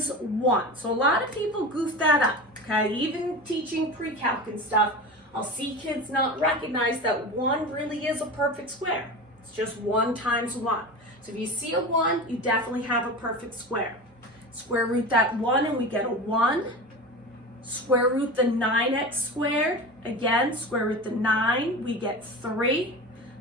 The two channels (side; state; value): both; normal; correlation 0.29